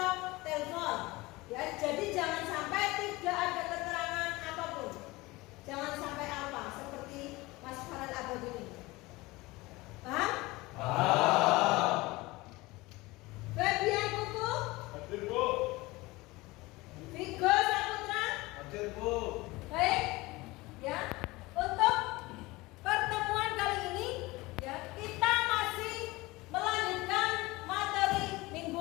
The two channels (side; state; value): right; quieter; 21.4 dB